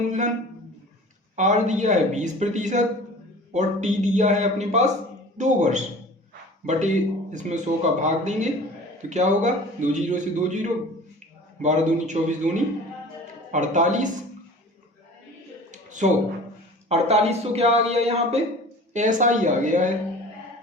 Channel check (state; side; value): normal; both; correlation 0.42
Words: R दिया है 20%, और T दिया है अपने पास 2 वर्ष, बटे इसमें 100 का भाग देंगे तो क्या होगा 2 जीरो से 2 जीरो, 12 दूनी 24 दूनी 48, 4800 क्या आ गया यहाँ पे SI आ गया है।